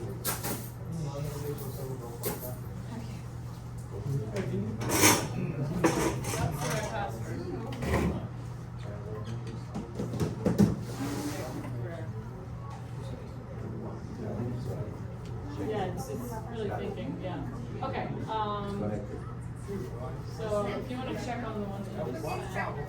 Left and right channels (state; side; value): identical; both; correlation 1.00